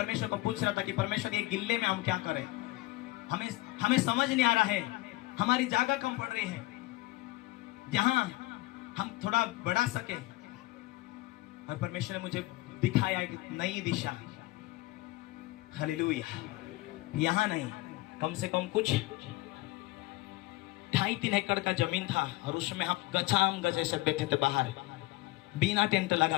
को पूछ रहा था कि परमेश्वर ये गिल्ले में हम क्या करें, हमें समझ नहीं आ रहा है, हमारी जगह कम पड़ रही है जहां हम थोड़ा बढ़ा सके। और परमेश्वर ने मुझे दिखाया एक नई दिशा। हालेलुया। यहां नहीं, कम से कम कुछ 2.5-3 एकड़ का जमीन था और उसमें हम गचाम गज ऐसे बैठे थे, बाहर बिना टेंट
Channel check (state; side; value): quieter; right; 20.3 dB